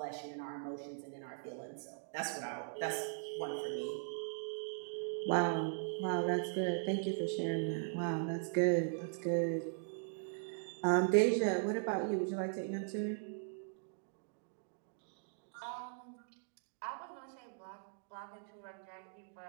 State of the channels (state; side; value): silent; left; digital silence